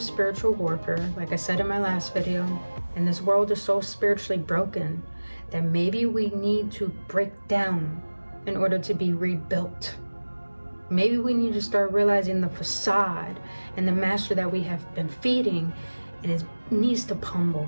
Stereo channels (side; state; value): both; inverted; correlation -1.00